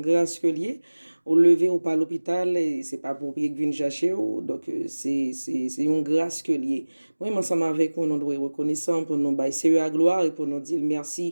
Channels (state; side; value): inverted; both; correlation -1.00